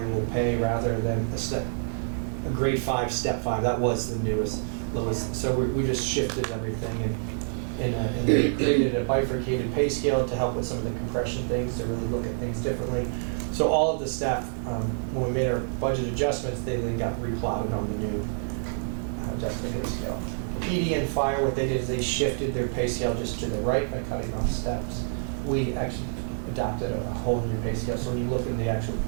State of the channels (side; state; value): left; silent; digital silence